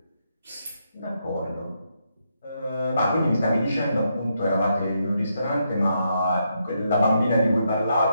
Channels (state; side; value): inverted; both; correlation -0.80